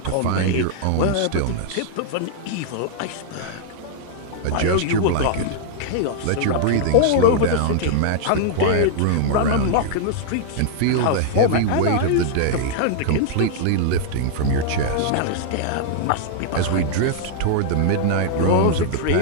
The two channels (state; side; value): different; both; correlation -0.01